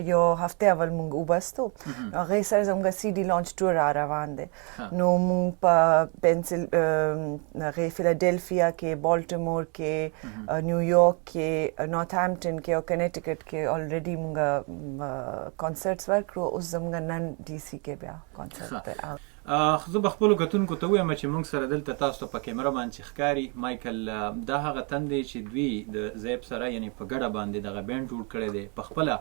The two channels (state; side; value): quieter; left; 34.7 dB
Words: یو هفته اول موږ وبستو، هغې سره زموږ سی ډي لانچ ټور را روان دی. نو موږ په فیلاډلفیا کې، بالټیمور کې، نیویارک کې، نارت هامپټن کې او کنیټیکټ کې الریډي موږ کنسرټس ورکړو. اوس زموږ نن ډي سی کې بیا کنسرټ دی. زه به خپلو کتونکو ته ووایم چې موږ سره دلته تاسو ته په کیمره باندې چې ښکاري مایکل، دا هغه تن دی چې دوی د زیب سره یعنی په ګډه باندې دغه بینډ جوړ کړی دی. په خپله